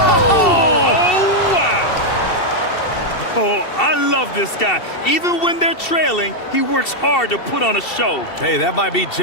wow. Oh, I love this guy. Even when they're trailing, he works hard to put on a show. Hey, that might be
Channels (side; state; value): right; late; 2.7 ms